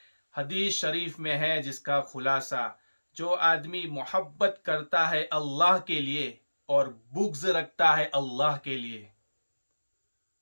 حدیث شریف میں ہے جس کا خلاصہ، جو آدمی محبت کرتا ہے اللہ کے لیے اور بغض رکھتا ہے اللہ کے لیے،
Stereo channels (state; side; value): inverted; both; correlation -1.00